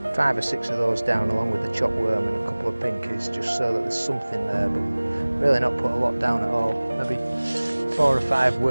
5 or 6 of those down along with the chopped worm and a couple of pinkies, just so that there's something there, but really not put a lot down at all. Maybe 4 or 5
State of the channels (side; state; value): both; inverted; correlation -1.00